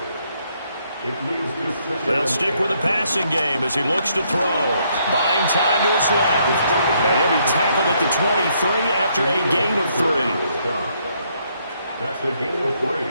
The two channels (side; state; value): both; inverted; correlation -0.72